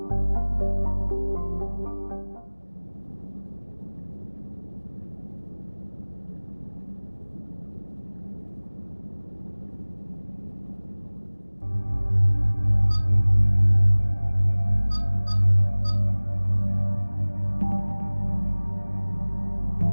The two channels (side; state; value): both; inverted; correlation -1.00